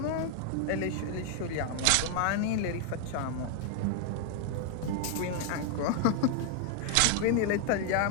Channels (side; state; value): both; different; correlation 0.00